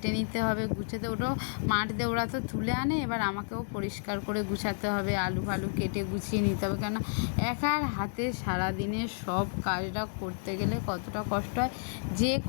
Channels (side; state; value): right; silent; digital silence